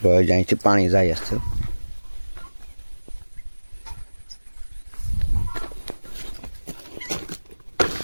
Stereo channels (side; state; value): both; inverted; correlation -1.00